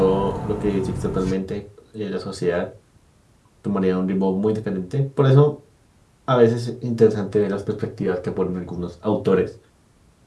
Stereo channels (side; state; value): both; identical; correlation 1.00